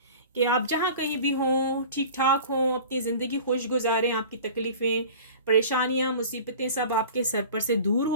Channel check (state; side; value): inverted; both; correlation -0.41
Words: कि आप जहाँ कहीं भी हों ठीक ठाक हों, अपनी ज़िंदगी खुश गुजारें, आपकी तकलीफ़ें परेशानियाँ मुसीबतें सब आपके सर पर से दूर